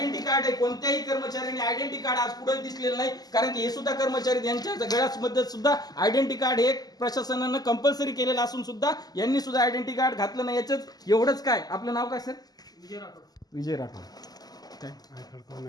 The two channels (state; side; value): late; right; 0.19 ms